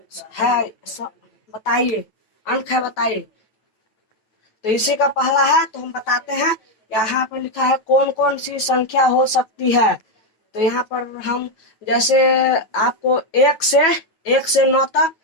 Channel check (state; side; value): late; right; 9.2 ms